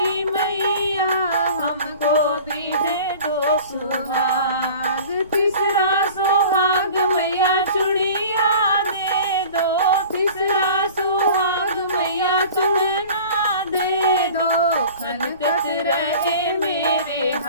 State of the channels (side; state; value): both; inverted; correlation -0.42